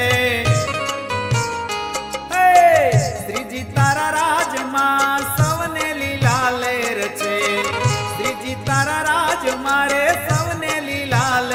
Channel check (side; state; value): both; identical; correlation 1.00